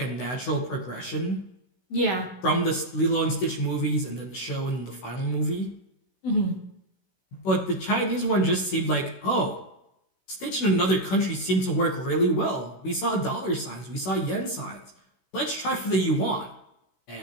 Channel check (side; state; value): right; late; 16 ms